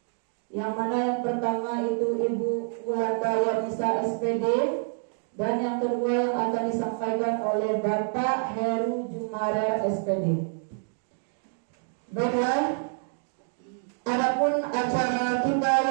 yang mana yang pertama itu Ibu Wulanda Yanisa SPD, dan yang kedua yang akan disampaikan oleh Bapak Heru Jumarer SPD. Baiklah, adapun acara kita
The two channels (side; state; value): left; silent; 60 dB below the other